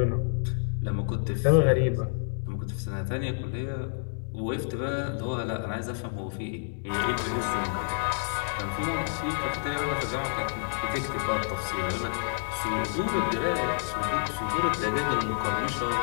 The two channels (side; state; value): right; silent; digital silence